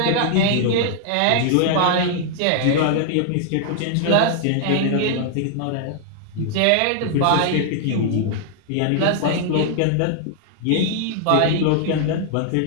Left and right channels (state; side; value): different; both; correlation 0.00